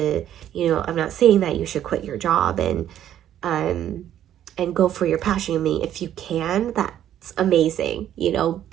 I'm not saying that you should quit your job and go for your passion. I mean, if you can, that's amazing,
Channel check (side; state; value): left; quieter; 11.1 dB